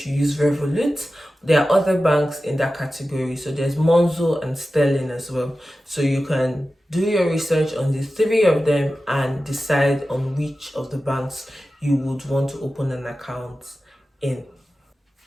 use Revolut. There are other banks in that category. So there's Monzo and Sterling as well. So you can do your research on the three of them and decide on which of the banks you would want to open an account in.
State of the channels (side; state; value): both; normal; correlation 0.94